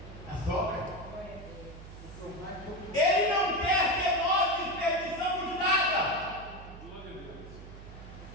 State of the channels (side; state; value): right; noise; hum, 14 dB below the sound